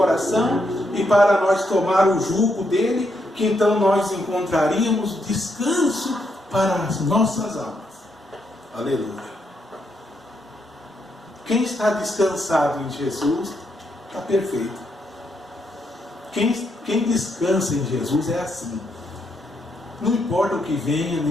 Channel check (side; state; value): both; normal; correlation 0.79